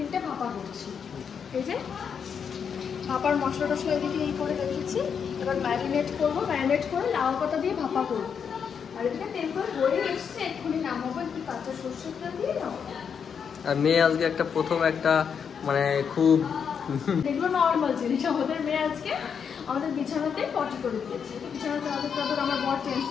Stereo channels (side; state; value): right; quieter; 7.0 dB